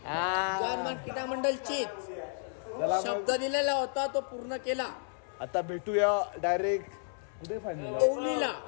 जर्मन क्रीडा मंडळचीच. शब्द दिलेला होता तो पूर्ण केला. आता भेटूया डायरेक्ट कुठे फायनल ओवलीला.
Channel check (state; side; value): silent; right; 56 dB below the other